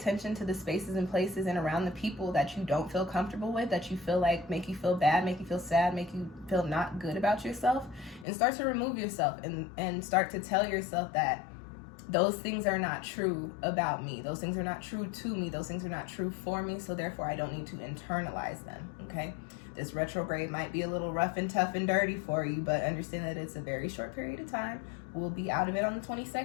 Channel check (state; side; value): drops out; right; at 8.2 s